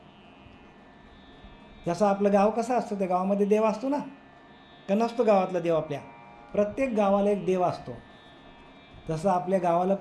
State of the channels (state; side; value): identical; both; correlation 1.00